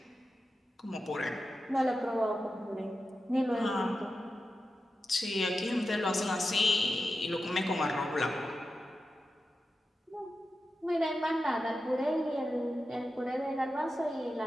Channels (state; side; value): normal; both; correlation 0.91